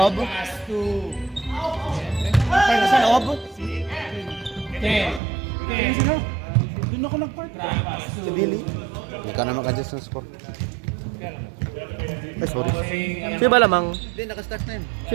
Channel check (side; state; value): left; drops out; at 5.2 s